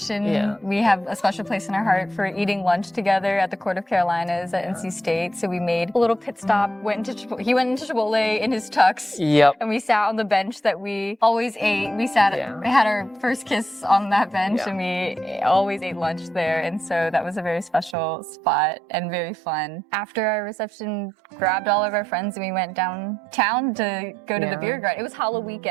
Yeah. We have a special place in our heart for eating lunch together at the Court of Carolinas at NC State. So we made a little pit stop. He went into Chipotle in his tux. Yep. And we sat on the bench that we always ate. We had our first kiss on that bench, and we always ate lunch there. And so that was a very special spot and very fun. After our reception, grabbed all of our friends and we went downtown to go to the beer garden. It was Halloween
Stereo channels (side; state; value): left; drops out; at 17.9 s